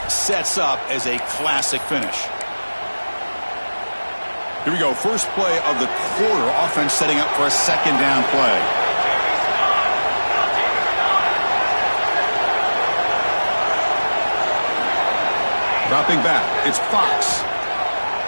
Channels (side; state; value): both; inverted; correlation -1.00